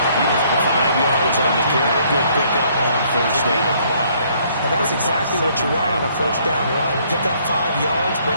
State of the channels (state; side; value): inverted; both; correlation -0.65